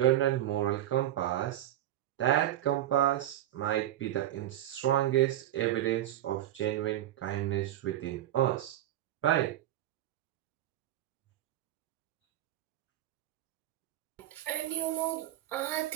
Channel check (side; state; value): left; quieter; 13.2 dB